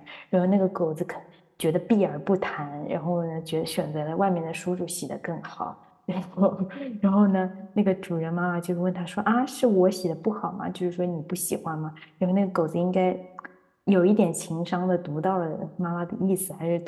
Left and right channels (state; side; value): identical; both; correlation 1.00